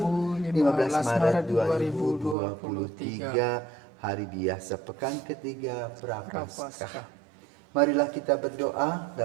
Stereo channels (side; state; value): left; drops out; at 2.4 s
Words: 15 Maret 2023, hari biasa pekan ketiga Prapaskah. Marilah kita berdoa